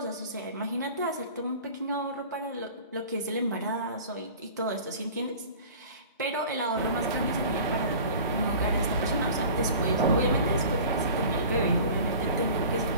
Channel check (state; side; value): inverted; both; correlation -0.42